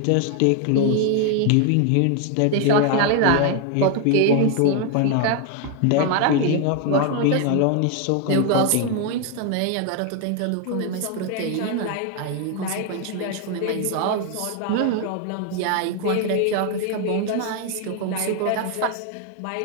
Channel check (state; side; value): different; both; correlation 0.01